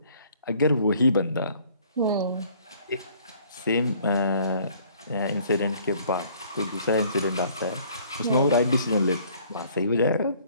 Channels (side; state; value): both; inverted; correlation -0.58